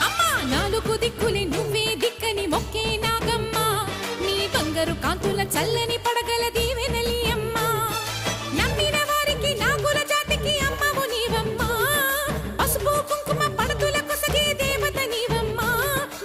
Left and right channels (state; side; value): identical; both; correlation 1.00